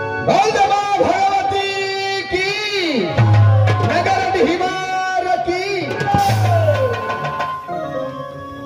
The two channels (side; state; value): both; identical; correlation 1.00